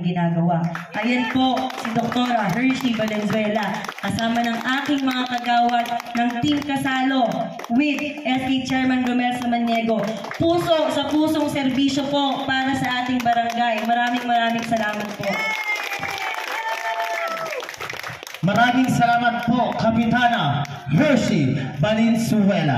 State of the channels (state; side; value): identical; both; correlation 1.00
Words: ginagawa. Ayan po si Dr. Hershey Valenzuela, kasama ng aking mga kagawad ng Team Kasalo with SK Chairman Romel Samaniego. Puso sa pusong serbisyo po para sa ating barangay. Maraming salamat po. Maraming salamat po, Kapitana Hershey